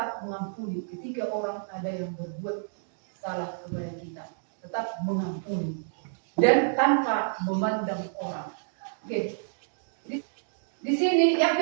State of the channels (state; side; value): silent; left; digital silence